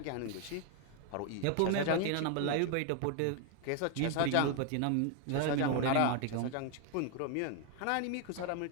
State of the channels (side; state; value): both; different; correlation 0.01